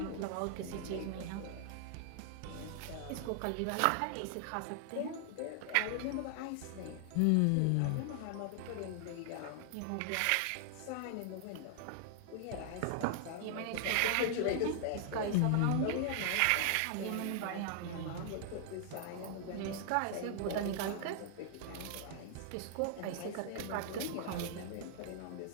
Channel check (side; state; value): both; different; correlation 0.00